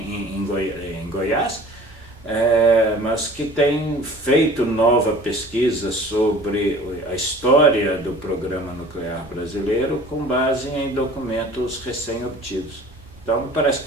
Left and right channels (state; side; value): normal; both; correlation 0.45